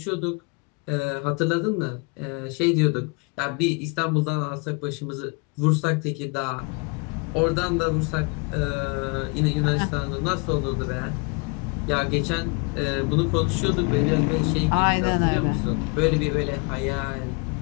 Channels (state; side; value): quieter; right; 31.5 dB